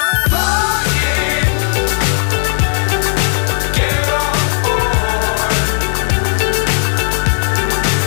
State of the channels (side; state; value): right; silent; 61 dB below the other